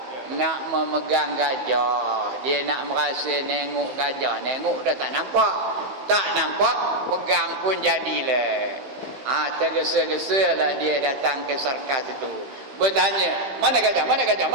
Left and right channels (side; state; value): left; late; 15 ms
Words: Nak memegang gajah. Dia nak merasa nengok gajah. Nengok dah tak nampak. Tak nampak, pegang pun jadilah. Tergesa-gesa lah dia datang ke sarkas itu. Bertanya, mana gajah? Mana gajah?